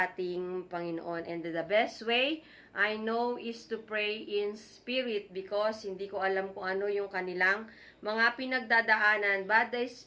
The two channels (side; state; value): both; identical; correlation 1.00